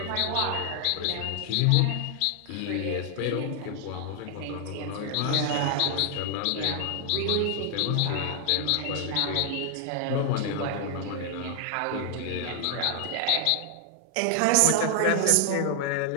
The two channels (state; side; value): different; both; correlation 0.00